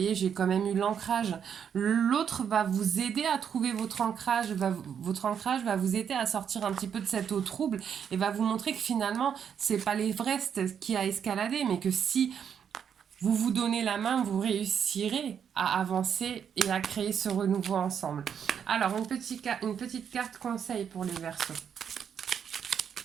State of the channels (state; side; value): quieter; left; 7.9 dB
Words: j'ai quand même eu l'ancrage. L'autre va vous aider à trouver votre ancrage, votre ancrage va vous aider à sortir un petit peu de cette eau trouble et va vous montrer que finalement, c'est pas l'Everest qui a escaladé, mais que si vous vous donnez la main, vous réussirez à avancer et à créer ce renouveau ensemble. Alors, une petite carte conseil pour les Verseaux.